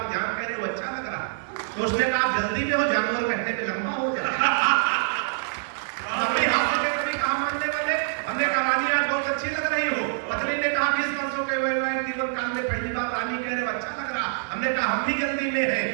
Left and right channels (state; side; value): silent; left; 56 dB below the other